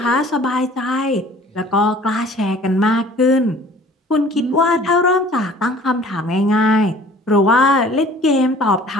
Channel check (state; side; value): normal; both; correlation 0.50